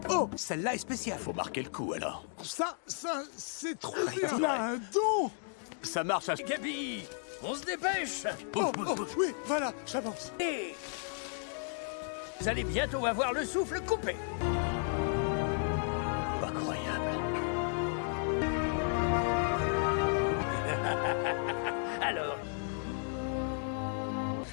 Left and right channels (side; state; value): right; silent; 55 dB below the other